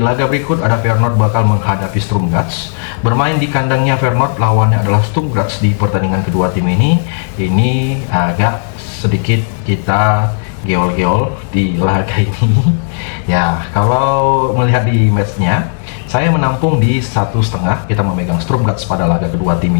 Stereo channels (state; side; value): silent; right; digital silence